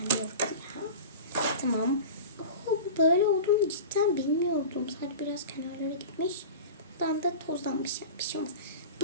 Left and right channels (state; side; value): inverted; both; correlation -0.32